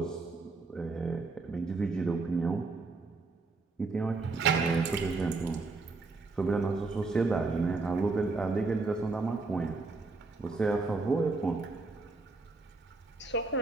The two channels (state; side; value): quieter; left; 3.7 dB